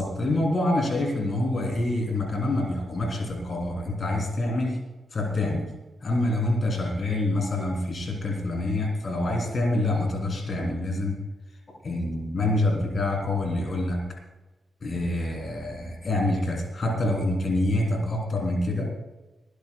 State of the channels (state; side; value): normal; both; correlation 0.78